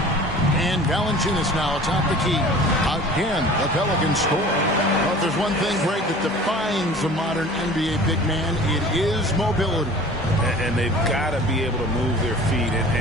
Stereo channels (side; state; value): both; normal; correlation 0.44